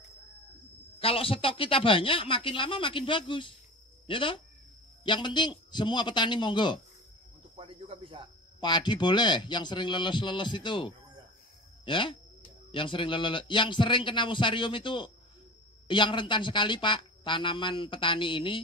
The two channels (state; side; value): normal; both; correlation 0.35